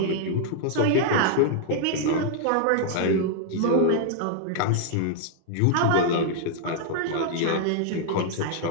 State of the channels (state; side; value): different; both; correlation -0.01